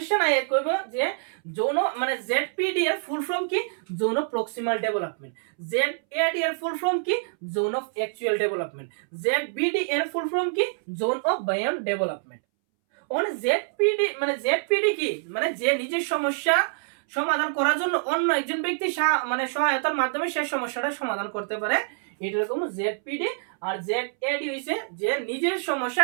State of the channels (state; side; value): silent; left; 61 dB below the other